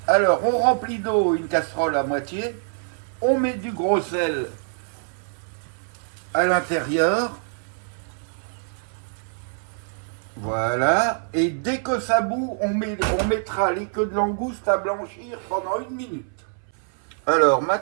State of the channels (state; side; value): silent; left; 58 dB below the other